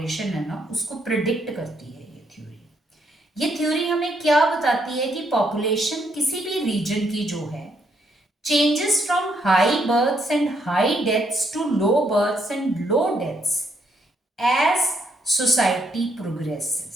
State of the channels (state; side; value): normal; both; correlation 0.74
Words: है ना उसको प्रिडिक्ट करती है ये थ्योरी। ये थ्योरी हमें क्या बताती है कि पॉपुलेशन किसी भी रीजन की जो है changes from high births and high deaths to low births and low deaths as society